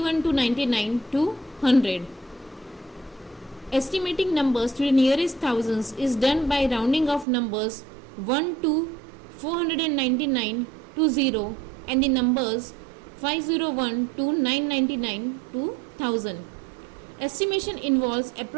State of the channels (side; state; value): left; drops out; at 7.2 s